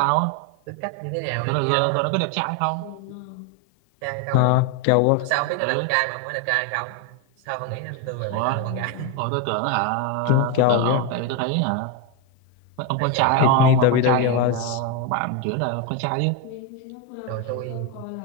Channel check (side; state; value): both; different; correlation 0.02